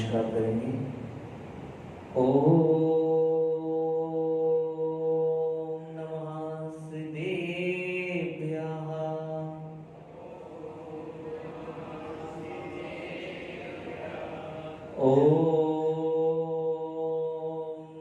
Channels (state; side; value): identical; both; correlation 1.00